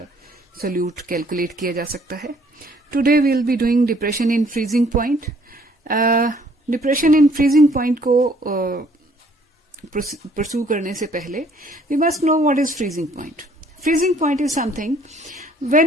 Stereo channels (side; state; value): both; normal; correlation 0.61